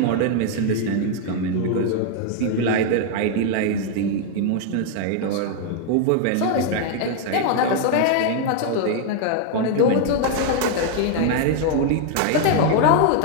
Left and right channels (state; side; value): different; both; correlation 0.00